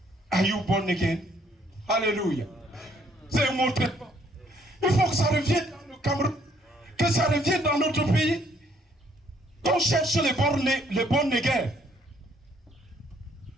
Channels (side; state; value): both; normal; correlation 0.66